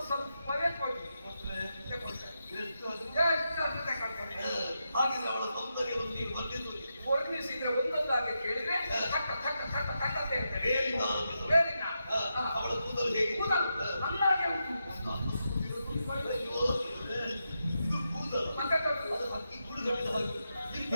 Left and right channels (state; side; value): inverted; both; correlation -0.86